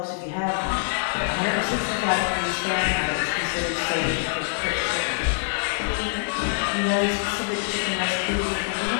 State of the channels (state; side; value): silent; right; digital silence